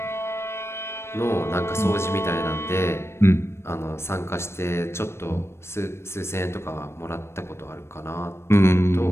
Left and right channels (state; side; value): late; right; 0.12 ms